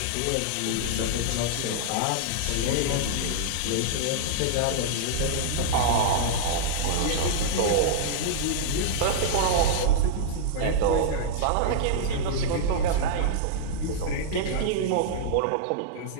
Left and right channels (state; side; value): different; both; correlation -0.02